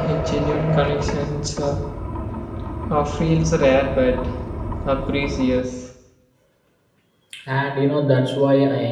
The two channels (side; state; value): both; identical; correlation 1.00